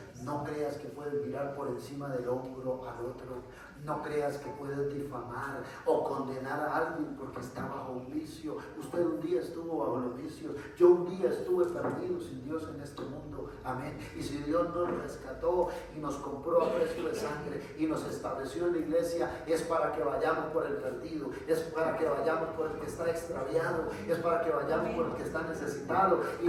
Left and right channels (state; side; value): identical; both; correlation 1.00